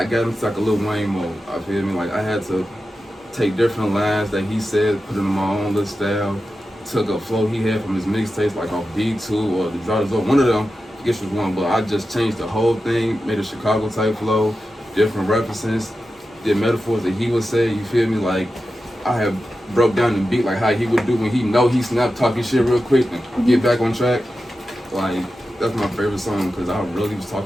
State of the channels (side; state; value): both; normal; correlation 0.92